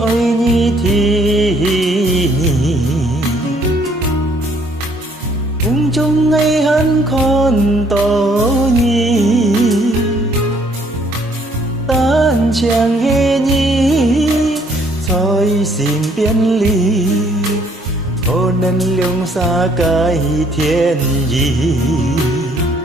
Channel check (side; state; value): both; normal; correlation 0.64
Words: 你天梦中爱恨看到你单枪的你在身边里可能两三个天意